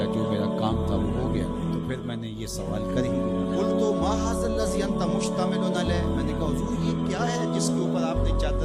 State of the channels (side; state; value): both; identical; correlation 1.00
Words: جو میرا کام تھا وہ ہو گیا، تو پھر میں نے یہ سوال کر ہی لیا، قلت ما ھذا الذی انت مشتمل علیہ، میں نے کہا حضور یہ کیا ہے جس کے اوپر آپ نے